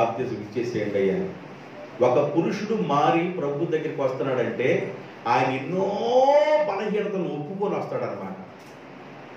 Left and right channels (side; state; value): both; identical; correlation 1.00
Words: ఇచ్చేసేయండి అయ్యా. ఒక పురుషుడు మారి ప్రభు దగ్గరికి వస్తున్నాడంటే ఆయన ఎన్నో బలహీనతలను ఒప్పుకొని వస్తాడనమాట.